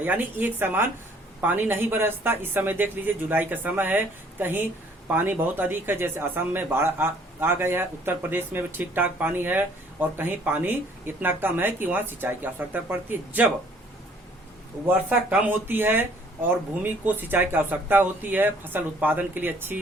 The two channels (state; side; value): normal; both; correlation 0.59